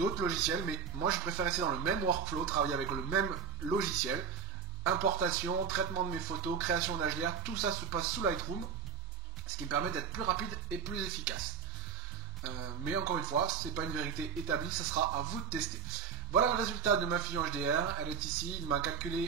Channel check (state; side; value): quieter; left; 6.4 dB